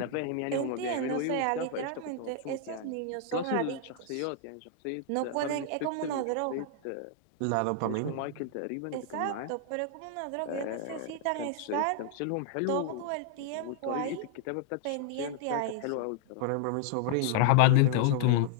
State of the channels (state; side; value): different; both; correlation -0.01